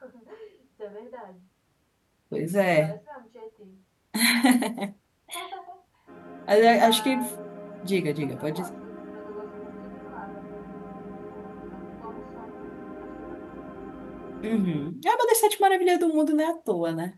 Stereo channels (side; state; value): both; identical; correlation 1.00